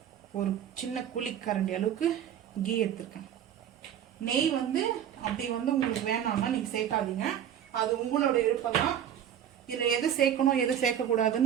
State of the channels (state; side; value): quieter; left; 9.8 dB